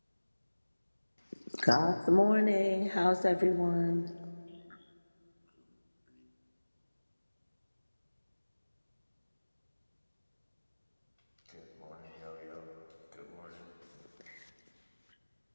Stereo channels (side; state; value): both; inverted; correlation -1.00